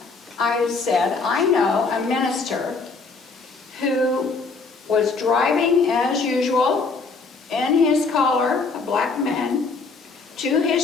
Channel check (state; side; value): quieter; right; 4.3 dB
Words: I said, I know a minister who was driving as usual in his collar, a black man, to